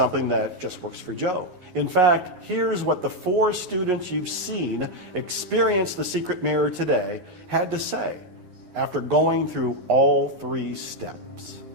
that just works for Joe. In fact, here's what the 4 students you've seen experience the secret mirror today had to say after going through all 3 steps.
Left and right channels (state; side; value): late; left; 9.6 ms